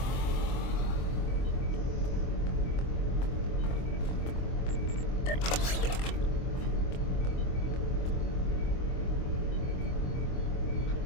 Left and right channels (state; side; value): late; right; 24 ms